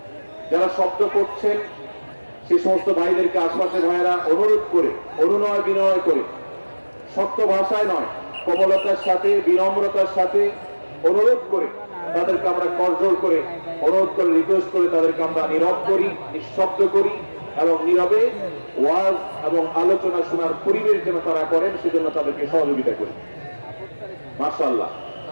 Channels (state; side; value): inverted; both; correlation -1.00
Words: যারা শব্দ করছেন, সেই সমস্ত ভাইদেরকে আশপাশের ভাইয়েরা অনুরোধ করে, অনুনয় বিনয় করে, শক্ত ভাষায় নয়, কোমলতার সাথে, বিনম্রতার সাথে অনুরোধ করে তাদেরকে আমরা করজোর করে, অনুরোধ করে, রিকোয়েস্ট করে তাদেরকে আমরা নীরব করি, নিঃশব্দ করি, এবং নীরবে ওয়াজ এবং আলোচনা শোনার পরিবেশ যেন তারা করেন, সেজন্য তাদেরকে সহযোগিতা করি। মাশাআল্লাহ,